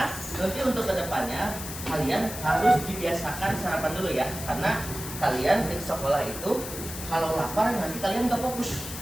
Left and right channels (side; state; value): left; noise; hiss, 9 dB below the sound